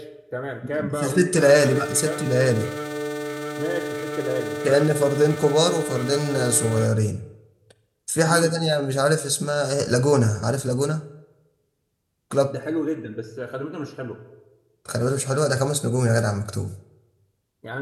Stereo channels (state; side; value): identical; both; correlation 1.00